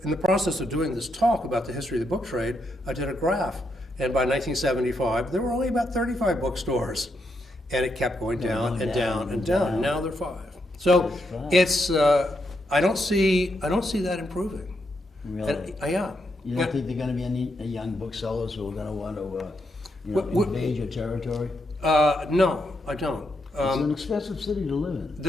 the process of doing this talk about the history of the book trade, I did a graph. And by 1975, there were only about 35 bookstores. And it kept going down and down and down. Now there are 5. So it's I don't see that improving. Really? Yeah. You don't think there are going to be any young booksellers who are going to want to invade your territory? No, I don't. It's an expensive city to live in.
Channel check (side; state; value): both; normal; correlation 0.80